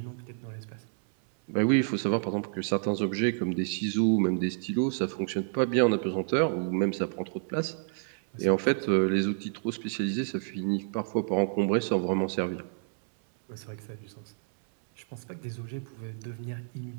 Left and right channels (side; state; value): left; silent; 58 dB below the other